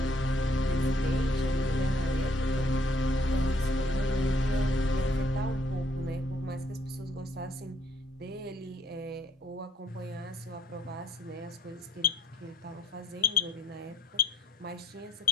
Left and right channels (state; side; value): normal; both; correlation 0.65